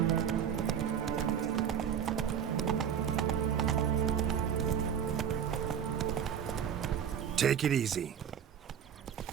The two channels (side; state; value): left; quieter; 8.4 dB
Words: Take it easy.